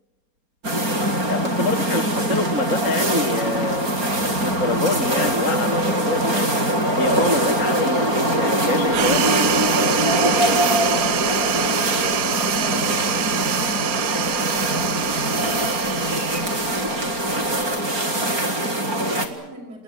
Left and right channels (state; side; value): late; left; 4.4 ms